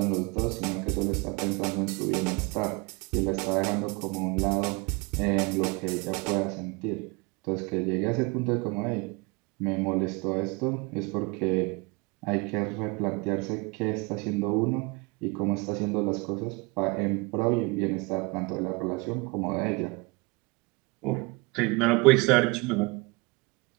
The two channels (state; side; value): quieter; left; 27.8 dB